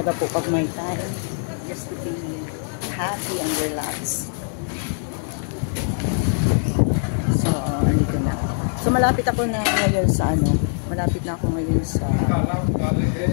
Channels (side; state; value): right; silent; 63 dB below the other